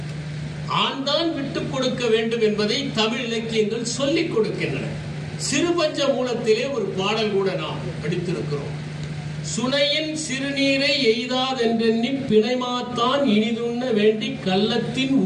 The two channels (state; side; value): identical; both; correlation 1.00